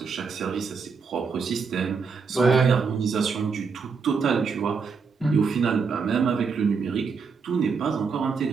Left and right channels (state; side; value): quieter; left; 5.3 dB